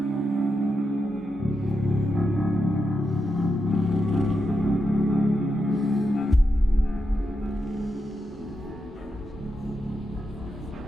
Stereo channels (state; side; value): normal; both; correlation 0.86